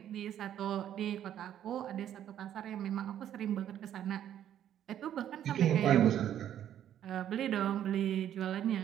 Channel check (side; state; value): left; quieter; 10.7 dB